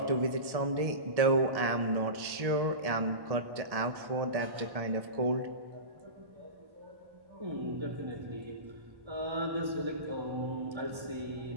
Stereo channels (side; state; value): left; late; 1.1 ms